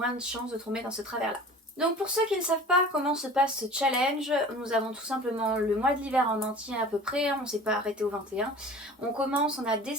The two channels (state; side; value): normal; both; correlation 0.42